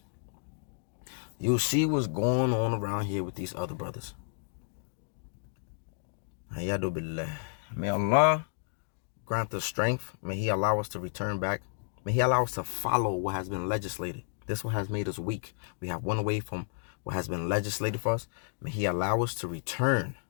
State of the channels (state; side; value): silent; right; digital silence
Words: You see what's going on around here with these other brothers. May Allah grant us strength. May He allow us to return back. May He allow us to follow what has been legislated. This one has made us weak. We have went away from what has been legislated for us. May He allow us to return